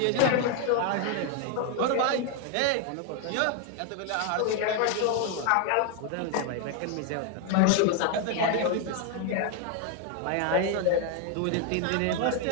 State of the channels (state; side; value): different; both; correlation 0.01